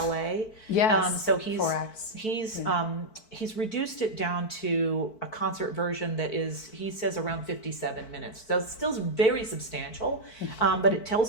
Yes. So he's 4 acts. He's reduced it down to a concert version that is, he says, around 57 minutes. So it's still very substantial, but it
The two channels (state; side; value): late; right; 4.5 ms